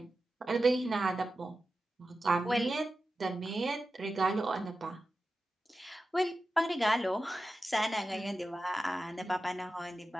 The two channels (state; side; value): normal; both; correlation 0.93